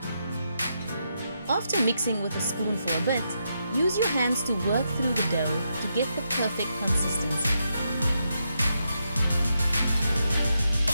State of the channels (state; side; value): inverted; both; correlation -0.83